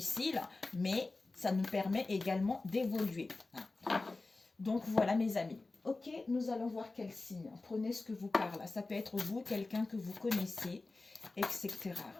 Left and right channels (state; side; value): quieter; right; 3.4 dB